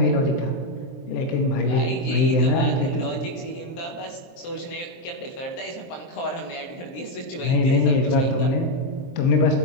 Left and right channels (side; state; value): right; late; 23 ms